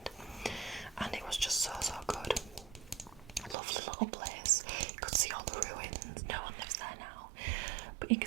and it was just so good. Lovely little place. You could see all the ruins. No one lives there now, but you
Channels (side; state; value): left; drops out; at 3.6 s